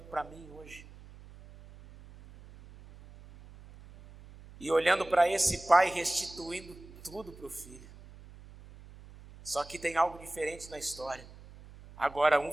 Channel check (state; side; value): noise; right; hum, 19 dB below the sound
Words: para mim hoje? E olhando para esse pai restituindo tudo para o filho. Só que tem algo diferente na história. Agora um